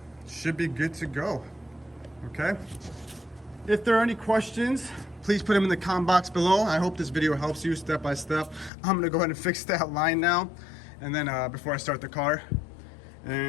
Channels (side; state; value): right; drops out; at 8.7 s